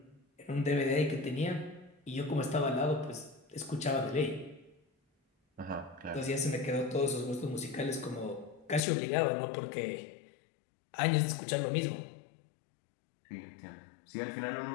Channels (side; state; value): right; drops out; at 8.8 s